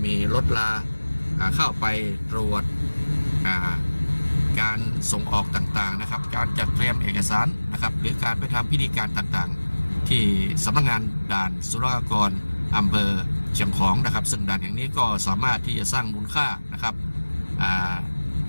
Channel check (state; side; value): inverted; both; correlation -1.00